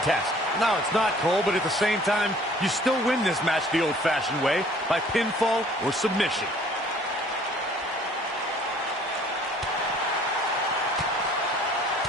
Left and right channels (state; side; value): normal; both; correlation 0.54